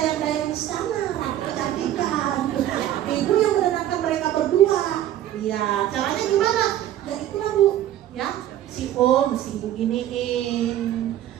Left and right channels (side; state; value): left; quieter; 12.3 dB